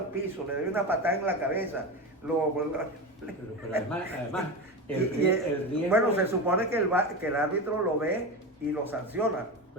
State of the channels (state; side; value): normal; both; correlation 0.22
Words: piso, le doy una patada en la cabeza. Pero además el riesgo... Bueno, se supone que el árbitro lo ve y lo sanciona,